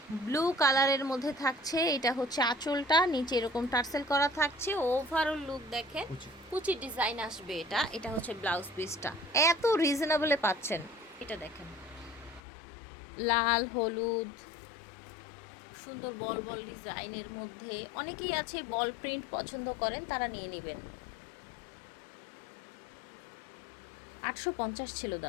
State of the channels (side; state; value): right; drops out; at 12.4 s